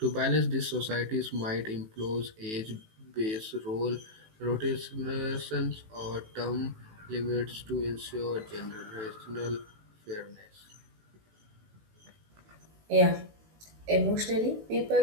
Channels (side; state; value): left; late; 18 ms